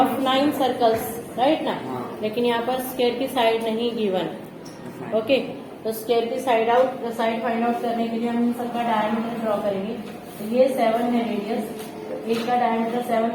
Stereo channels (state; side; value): identical; both; correlation 1.00